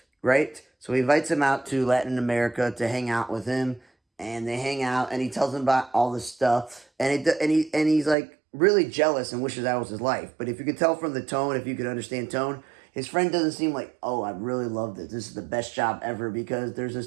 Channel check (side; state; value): left; drops out; at 8.2 s